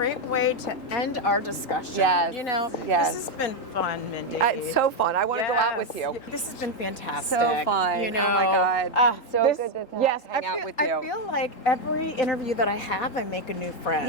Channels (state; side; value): late; right; 3.8 ms